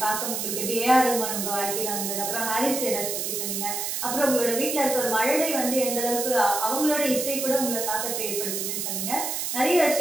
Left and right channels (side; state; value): right; noise; hiss, 2 dB below the sound